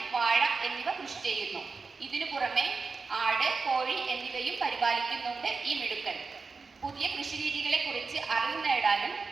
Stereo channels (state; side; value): quieter; left; 4.5 dB